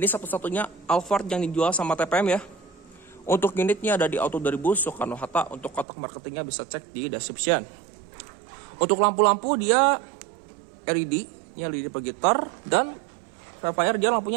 ini satu-satunya Alphard yang dijual sama TPM ya. Untuk unitnya ada di Auto 2000 Soekarno-Hatta. Untuk kotak marketingnya bisa cek di description. Untuk lampu-lampu dia LED, ini LED proyektor. Dan Velfire dia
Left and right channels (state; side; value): drops out; left; at 5.9 s